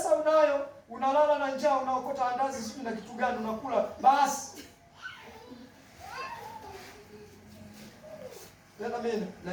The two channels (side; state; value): both; identical; correlation 1.00